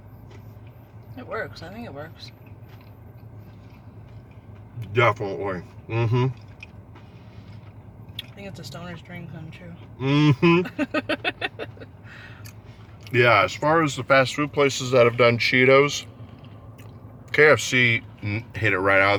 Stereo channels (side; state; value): both; identical; correlation 1.00